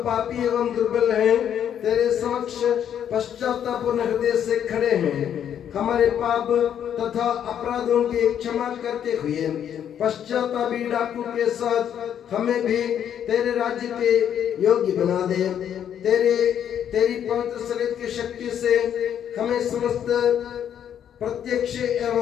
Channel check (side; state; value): right; quieter; 9.4 dB